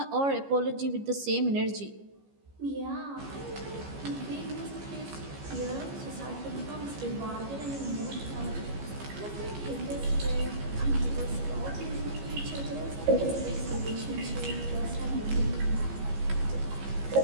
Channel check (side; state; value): left; late; 15 ms